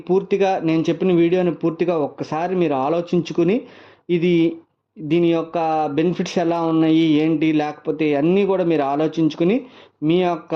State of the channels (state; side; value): identical; both; correlation 1.00